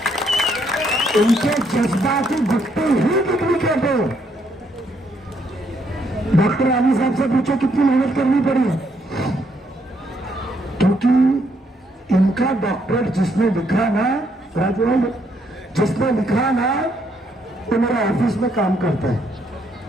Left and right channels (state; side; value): normal; both; correlation 0.73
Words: इनके जज्बाती गुट्टी ही डुप्लीकेट है। डॉक्टर आली साहब से पूछो कितनी मेहनत करनी पड़ी है, क्योंकि इनका डॉक्टर जिसने लिखा ना, राजवाल जिसने लिखा ना, वो मेरा ऑफिस में काम करता है।